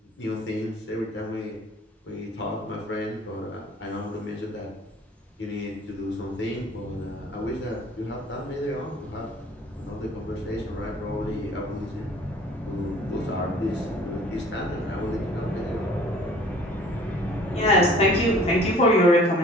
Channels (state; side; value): normal; both; correlation 0.51